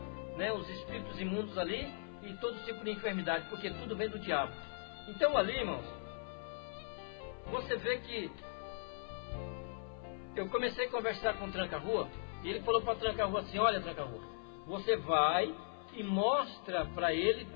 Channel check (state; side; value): silent; right; 52 dB below the other